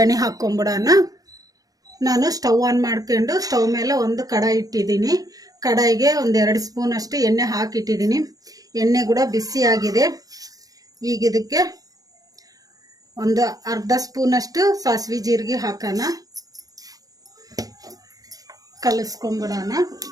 ಹಾಕ್ಕೊಂಬಿಡೋಣ. ನಾನು ಸ್ಟವ್ ಆನ್ ಮಾಡ್ಕೊಂಡು ಸ್ಟವ್ ಮೇಲೆ ಒಂದು ಕಡಾಯಿ ಇಟ್ಟಿದ್ದೀನಿ. ಕಡಾಯಿಗೆ ಒಂದು 2 ಸ್ಪೂನ್ ಅಷ್ಟು ಎಣ್ಣೆ ಹಾಕಿಟ್ಟಿದ್ದೀನಿ. ಎಣ್ಣೆ ಕೂಡ ಬಿಸಿ ಆಗಿದೆ. ಈಗ ಇದಕ್ಕೆ ಒಂದು ಅರ್ಧ ಸ್ಪೂನಷ್ಟು ಸಾಸಿವೆ ಜೀರಿಗೆ ಹಾಕೋಣ. ಕಲಿಸ್ಕೊಂಬಿಡೋಣ.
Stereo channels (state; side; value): late; left; 0.18 ms